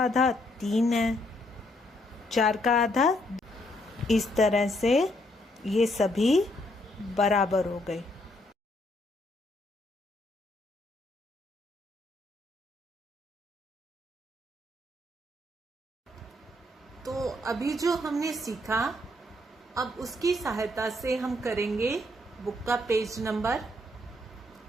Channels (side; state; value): both; normal; correlation 0.72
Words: आधा 3 है, 4 का आधा। इस तरह से ये सभी बराबर हो गए। तो अभी जो हमने सीखा, अब उसकी सहायता से हम करेंगे बुक का पेज नंबर